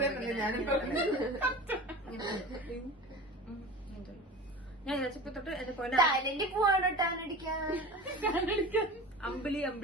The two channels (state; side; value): normal; both; correlation 0.34